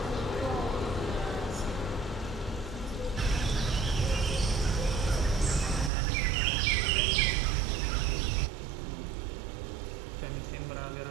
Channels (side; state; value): left; drops out; at 5.9 s